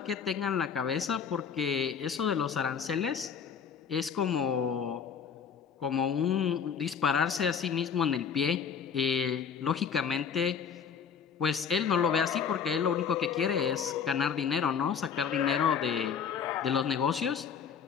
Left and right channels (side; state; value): right; quieter; 6.9 dB